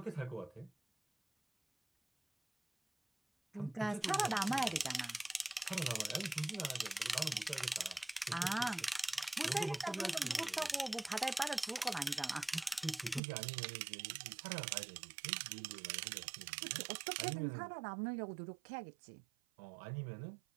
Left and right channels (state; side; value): drops out; left; at 13.2 s